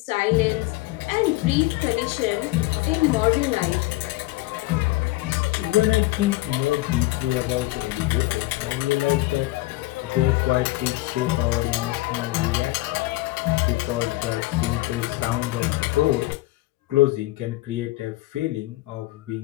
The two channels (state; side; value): quieter; right; 19.3 dB